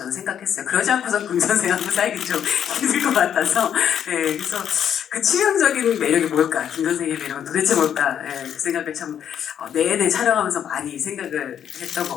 생각했어요. 그러지 않고서 금 선생하고 살기 좀 힘들 것 같아서 네, 그래서 그 치명적인 매력이 뭘까? 김 선생의 매력은 도대체 뭘까? 네, 그 생각을 참 내내 촬영하면서 많이 생각을 했던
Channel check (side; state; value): right; quieter; 9.1 dB